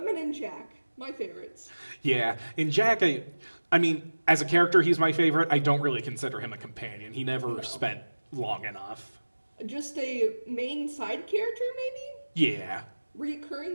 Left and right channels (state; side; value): inverted; both; correlation -1.00